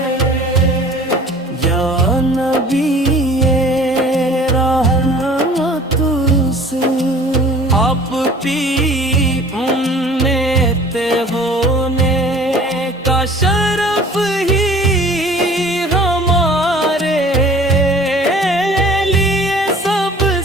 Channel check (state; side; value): normal; both; correlation 0.48